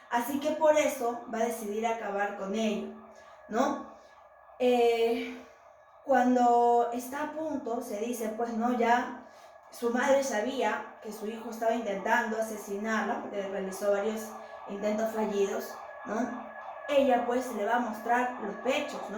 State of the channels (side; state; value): both; identical; correlation 1.00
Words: Así que por eso va a decidir acabar con ello, ¿no? Cuando está a punto, se dice, pues, no, ya su madre sabía que su hijo estaba intentando asesinarla, porque realizó varios intentos fallidos, ¿no? Ella, pues, le va a mostrar los pechos,